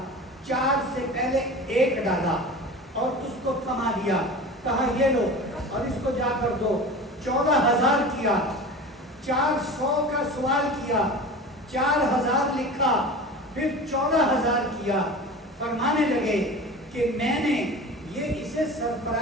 4 سے پہلے 1 ڈالا اور اس کو کما دیا، کہا یہ لو اور اس کو جا کر دو، 14000 کیا، 400 کا سوال کیا، 4000 لکھا، پھر 14000 کیا۔ فرمانے لگے کہ میں نے یہ اسے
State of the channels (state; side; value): normal; both; correlation 0.34